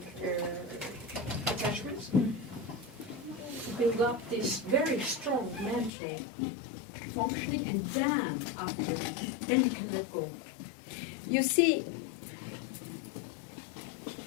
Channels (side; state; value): right; drops out; at 5.9 s